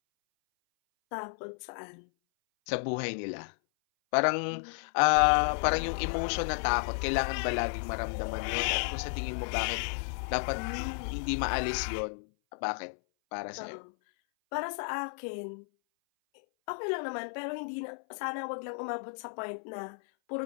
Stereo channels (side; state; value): right; silent; 56 dB below the other